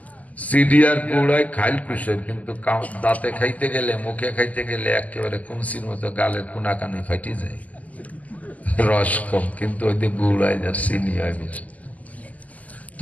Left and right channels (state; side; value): late; right; 0.075 ms